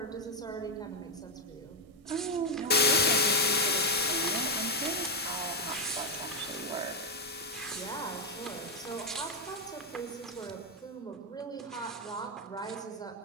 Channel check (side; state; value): both; normal; correlation 0.04